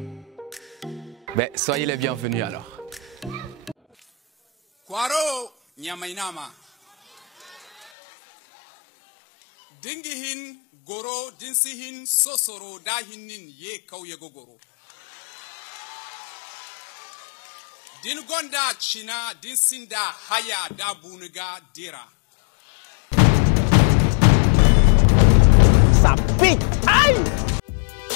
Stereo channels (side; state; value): right; drops out; at 7.9 s